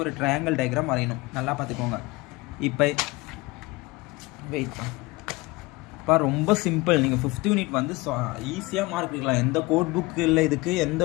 ஒரு ட்ரையாங்கிள் டயக்ராம் வரையணும். நல்லா பார்த்துக்கோங்க. இப்போ வெயிட்ப்பா, ரொம்ப சிம்பிள். நீங்கள் 5th யூனிட் வந்து ஈஸியாக மார்க் எடுக்கலாம். எந்த கோட் புக்கு இல்லை, இதுக்கு எந்த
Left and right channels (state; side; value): quieter; right; 22.8 dB